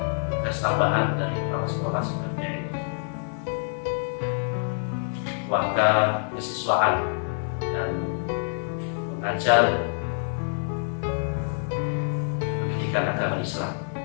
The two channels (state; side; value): silent; right; digital silence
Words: tugas tambahan dari kepala sekolah sebagai warga kesiswaan dan mengajar pendidikan agama Islam.